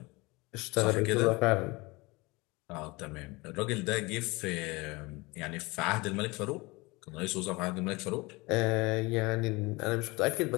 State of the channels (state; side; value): quieter; right; 24.3 dB